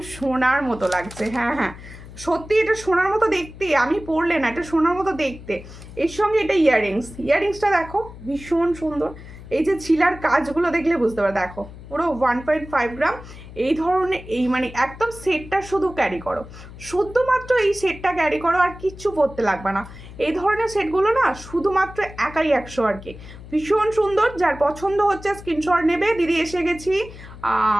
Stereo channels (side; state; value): left; noise; hum, 16 dB below the sound